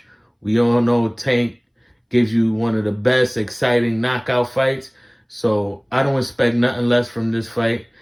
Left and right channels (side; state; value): both; identical; correlation 1.00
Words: We all know Tank gives you one of the best exciting knockout fights. So I don't expect nothing less from this fight.